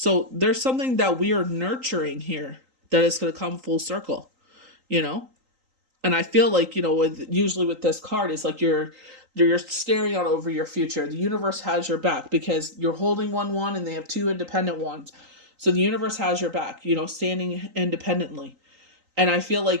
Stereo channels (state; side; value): late; left; 3.8 ms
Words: there's something that we are nurturing here that is going to come full circle, you know? And I feel like, you know, with usually with this card, it's like you're staring out over your future. The universe has your back because you're holding one and they have two independent ones. So the universe has your back, you know, standing independently. And I feel